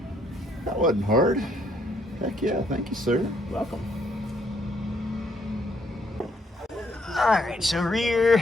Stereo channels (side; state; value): both; normal; correlation 0.69